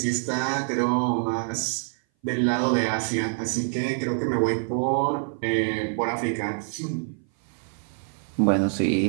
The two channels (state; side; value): silent; left; 58 dB below the other